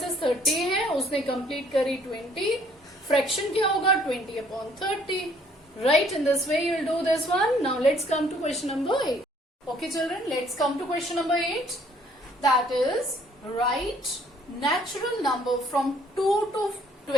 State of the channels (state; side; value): normal; both; correlation 0.61